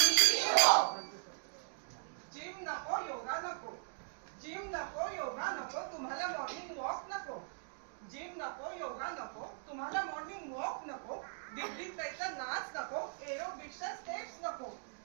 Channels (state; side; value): silent; left; digital silence